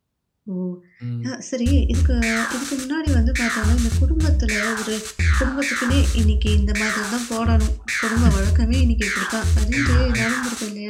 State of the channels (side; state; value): both; identical; correlation 1.00